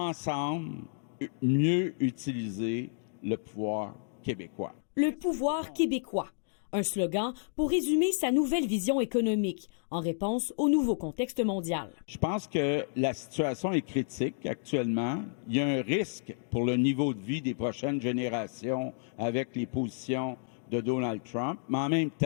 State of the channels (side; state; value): right; silent; digital silence